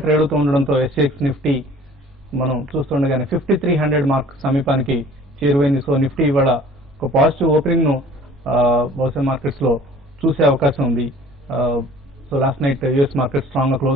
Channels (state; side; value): normal; both; correlation 0.50